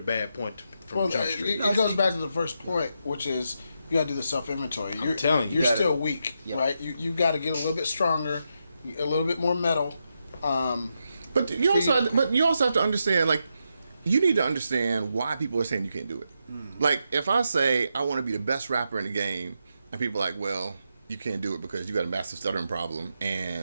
point from Jump Street. It goes back to the first point, which is you got to do the self inventory. I'm telling you, you're still weak, right? You got to get a little bit stronger, a little bit more metal. But you also have to understand, like, you need to understand why people are saying you can't do it. Like, if I say I want to be the best rapper in the game, and people are like, well, you can't do it because you got a massive stuttering problem,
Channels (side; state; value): both; inverted; correlation -0.84